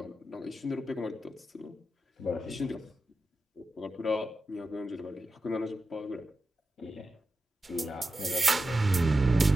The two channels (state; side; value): normal; both; correlation 0.91